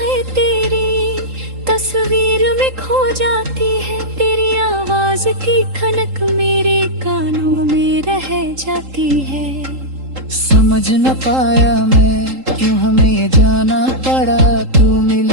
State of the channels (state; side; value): late; left; 3.8 ms